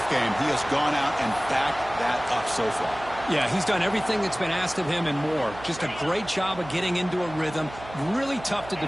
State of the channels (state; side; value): noise; right; hum, 15 dB below the sound